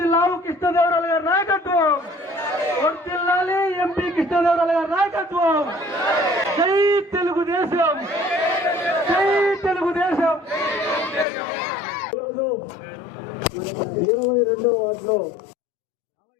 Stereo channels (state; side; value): drops out; right; at 11.2 s